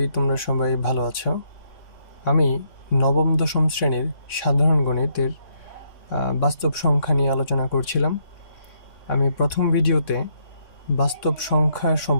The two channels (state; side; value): late; right; 3.6 ms